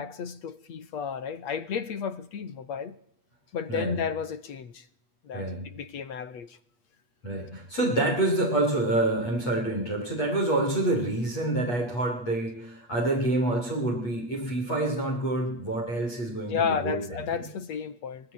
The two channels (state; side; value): late; right; 8.3 ms